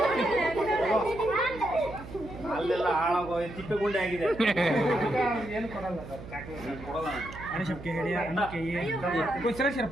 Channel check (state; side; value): noise; right; hum, 14 dB below the sound